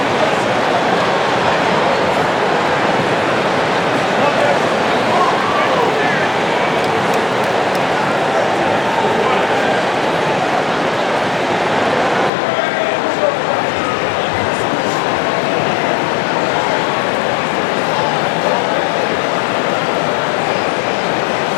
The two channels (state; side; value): drops out; right; at 12.3 s